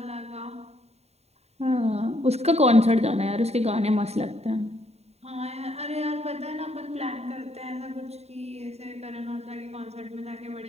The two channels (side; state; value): left; late; 0.31 ms